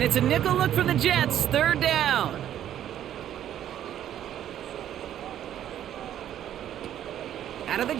it's a nickel look for the Jets. 3rd down. Out of the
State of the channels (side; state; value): left; quieter; 11.0 dB